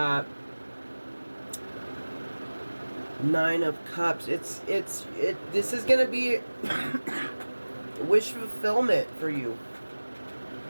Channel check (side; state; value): both; inverted; correlation -1.00